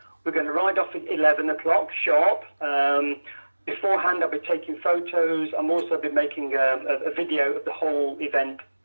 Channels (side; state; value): both; inverted; correlation -1.00